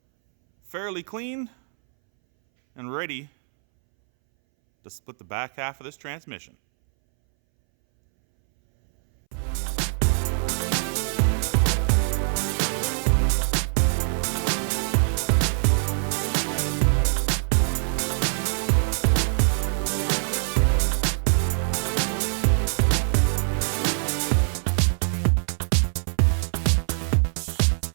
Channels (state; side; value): silent; left; 63 dB below the other